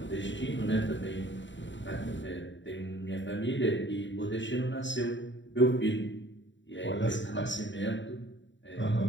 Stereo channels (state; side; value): late; right; 0.54 ms